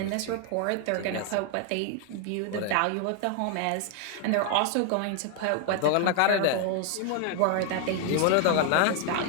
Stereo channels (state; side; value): different; both; correlation 0.00